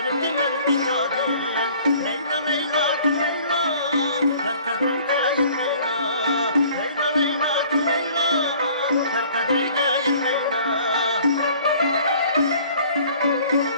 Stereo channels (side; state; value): both; inverted; correlation -0.53